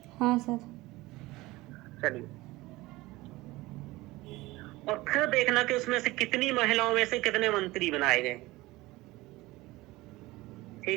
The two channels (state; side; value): quieter; left; 19.9 dB